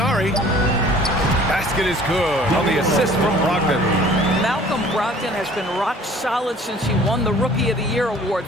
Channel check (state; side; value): normal; both; correlation 0.51